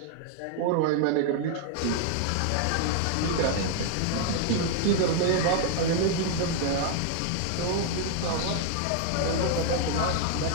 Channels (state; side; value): different; both; correlation 0.00